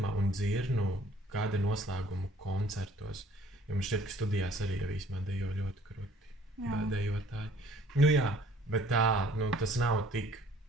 un dzirnu kāda noslēguma koncertos, jo man šķiet, ka studijās arī jau īsmā dejo ļoti kruti dejotāji. Nu jā, bet tā, nu, tas nav tik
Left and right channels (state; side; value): normal; both; correlation 0.57